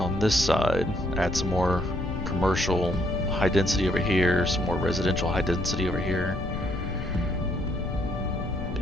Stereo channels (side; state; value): left; noise; rumble, 5 dB below the sound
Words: on this side, add some more commercial high density over here, some more residential high density over here.